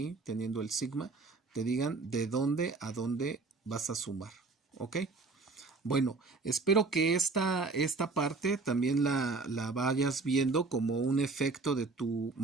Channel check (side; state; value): left; quieter; 3.9 dB